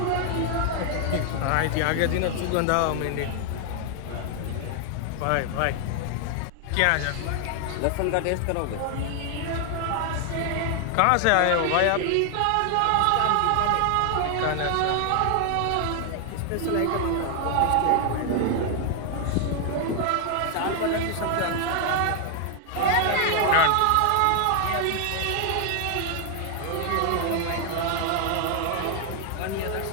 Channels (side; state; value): both; different; correlation 0.00